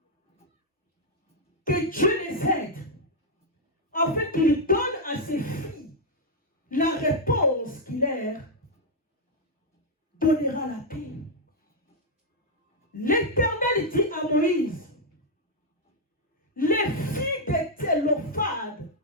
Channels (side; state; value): both; normal; correlation -0.02